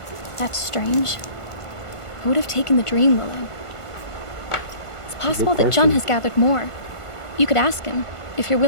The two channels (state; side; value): late; right; 1.5 ms